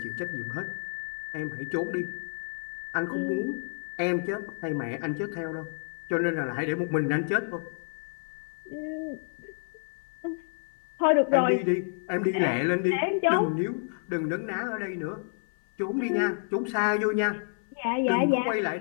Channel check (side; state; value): right; silent; 58 dB below the other